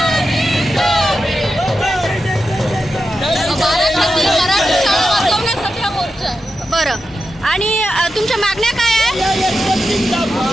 बरं, आणि तुमच्या मागण्या काय आहे?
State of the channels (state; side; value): normal; both; correlation 0.90